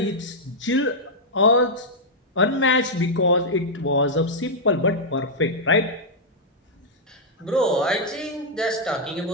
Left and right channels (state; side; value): normal; both; correlation -0.06